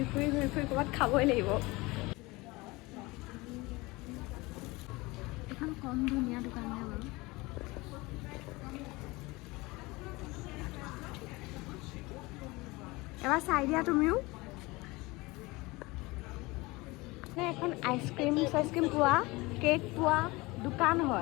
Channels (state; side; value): quieter; right; 22.7 dB